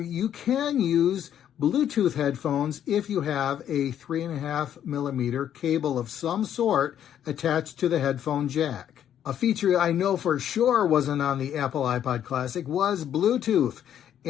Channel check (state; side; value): quieter; right; 10.1 dB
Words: can use Bluetooth headphones if you have a 3.5 millimeter cable of some sort attached to the headphone jack. A feature I know for sure wasn't on the Apple iPod Classic was Bluetooth,